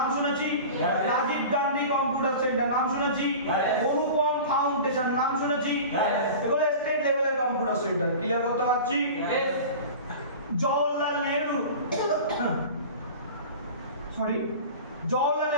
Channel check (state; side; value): inverted; both; correlation -0.36